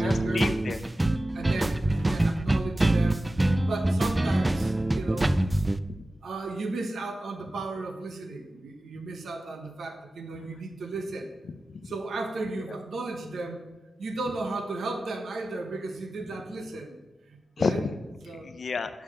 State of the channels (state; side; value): normal; both; correlation 0.94